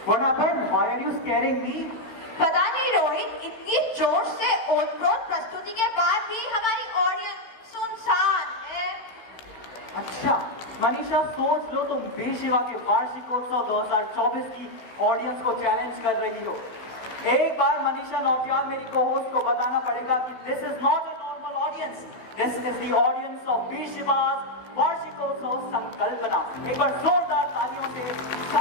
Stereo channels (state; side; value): late; right; 16 ms